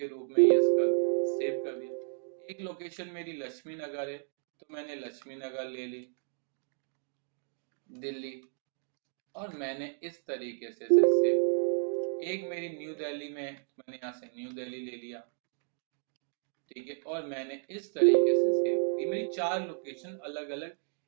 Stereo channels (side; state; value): left; silent; digital silence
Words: रूप में यस कर दिया, सेव कर दिया। एक लोकेशन मेरी लक्ष्मी नगर है, तो मैंने लक्ष्मी नगर ले ली दिल्ली, और मैंने इस तरीके से इसे सेव। एक मेरी न्यू दिल्ली में, मैंने यहाँ से न्यू दिल्ली ले लिया, ठीक है, और मैंने इस तरीके से सेव। ये मेरी 4 लोकेशन अलग अलग